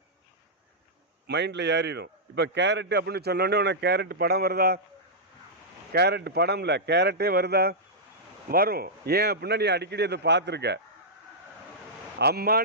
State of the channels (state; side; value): normal; both; correlation -0.10